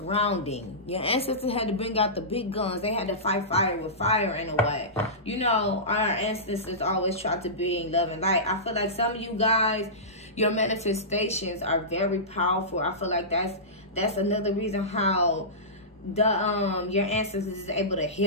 Your ancestors had to bring out the big guns. They had to fight fire with fire in a way. You know, our ancestors always tried to bring love and light. I feel like some of you guys, your manifestations are very powerful. I feel like that's another reason how your ancestors is able to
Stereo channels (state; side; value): normal; both; correlation -0.19